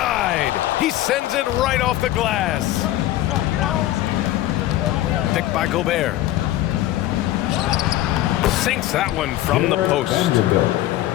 He sends it right off the glass. Picked by Gobert. Sinks that one from the post.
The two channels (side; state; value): right; quieter; 14.7 dB